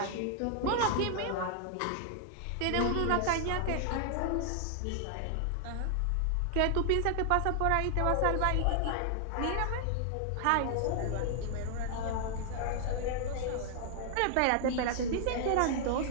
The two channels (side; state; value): both; different; correlation 0.00